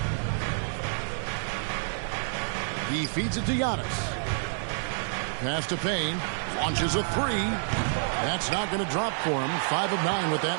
He feeds it to Giannis. Pass to Payne, launches a 3. That's not going to drop for him. 5 of 9 with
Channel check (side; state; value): left; silent; digital silence